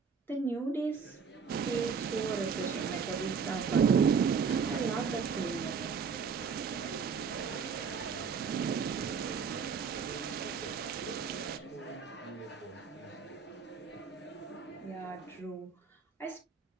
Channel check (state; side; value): quieter; left; 6.0 dB